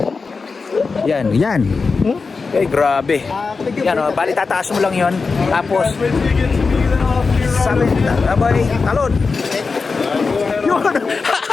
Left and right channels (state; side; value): quieter; right; 4.5 dB